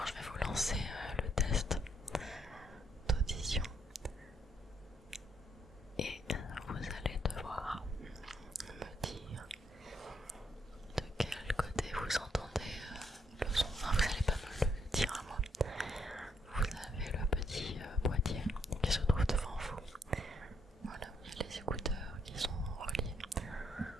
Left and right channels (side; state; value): both; normal; correlation 0.73